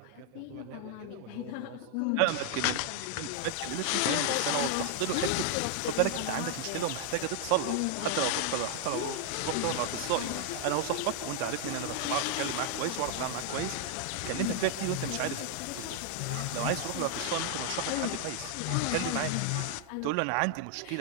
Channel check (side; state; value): both; different; correlation 0.00